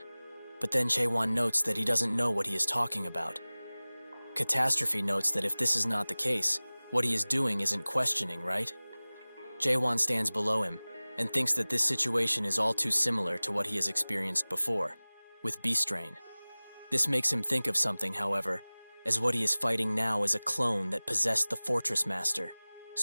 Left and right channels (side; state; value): both; inverted; correlation -1.00